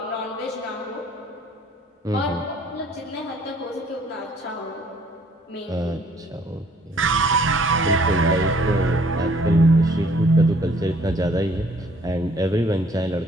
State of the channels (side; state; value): both; normal; correlation 0.59